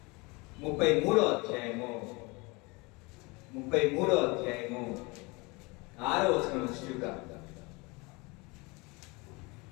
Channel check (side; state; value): right; quieter; 26.5 dB